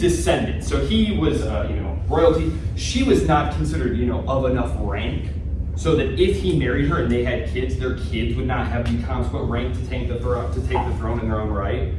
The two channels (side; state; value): both; identical; correlation 1.00